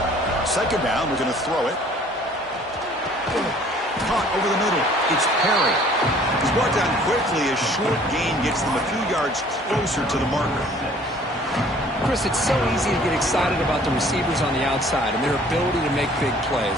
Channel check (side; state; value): both; normal; correlation 0.54